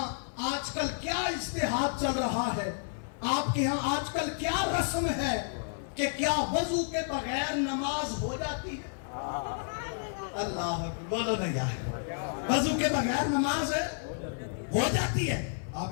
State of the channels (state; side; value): silent; right; 57 dB below the other